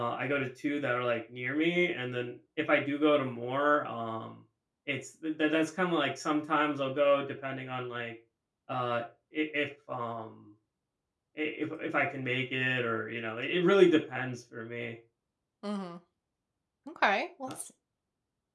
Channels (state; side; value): identical; both; correlation 1.00